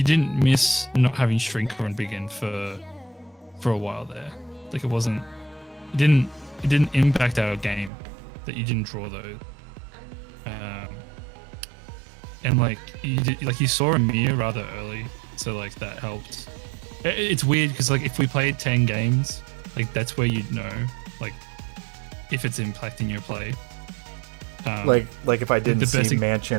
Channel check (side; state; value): left; drops out; at 7.9 s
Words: didn't miss not having Shrinker and Begin for a while there. Like it didn't impact our game that you didn't draw those. And like you saw a mirror rather early, so like that helped. It's weird because like if we played 10 games, like that's where you'd know like if it's impacting your play. Like if I didn't see